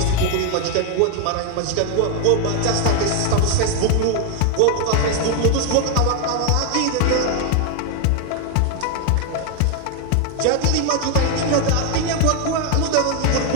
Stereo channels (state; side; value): different; both; correlation 0.00